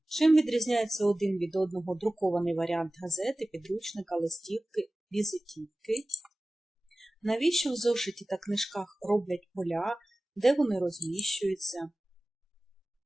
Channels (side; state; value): both; normal; correlation 0.97